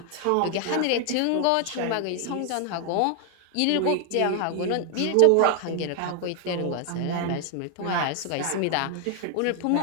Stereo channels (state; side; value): different; both; correlation 0.00